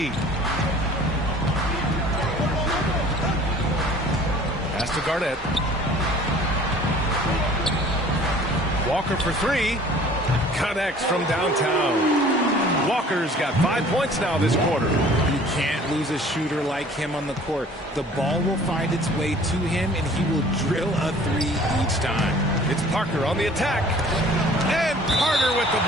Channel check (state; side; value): normal; both; correlation 0.50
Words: Pass to Garnett. Walker for 3. Connects from downtown. Walker's got 5 points now this quarter. You can't lose a shooter like him on the court. The ball will find its way to him, and he will drill a 3 each time. It's Parker on the attack. And Carter with the